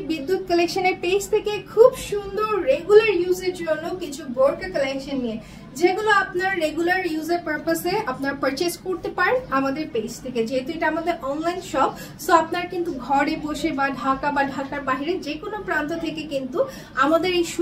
বিদ্যুৎ কালেকশনের পেজ থেকে খুব সুন্দর রেগুলার ইউজের জন্য কিছু বোরকা কালেকশন নিয়ে, যেগুলো আপনার রেগুলার ইউজের পারপাসে আপনার পারচেজ করতে পারেন আমাদের পেজ থেকে। যেহেতু এটা আমাদের অনলাইন শপ, সো আপনার কিন্তু ঘরে বসে বা ঢাকা বা ঢাকার বাইরে যে কোনো প্রান্ত থেকে কিন্তু আমাদের এই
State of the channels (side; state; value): both; identical; correlation 1.00